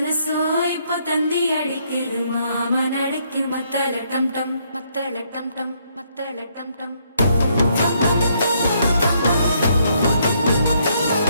கொலுசோ இப்போ தந்தி அடிக்குது மாமன் அடிக்கும் மத்தள டம் டம் மத்தள டம் டம் மத்தள டம் டம்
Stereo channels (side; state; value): both; inverted; correlation -0.71